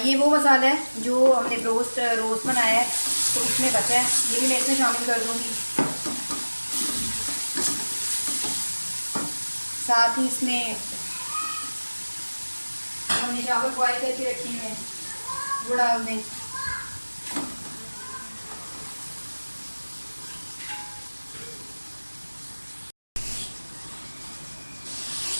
ये वो मसाला है जो हमने रोस्ट बनाया है तो उसमें बचा है, ये भी मैं इसमें शामिल कर दूँगी। साथ ही इसमें हमने चावल बॉयल करके रखे हैं वो डाल दें।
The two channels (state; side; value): inverted; both; correlation -1.00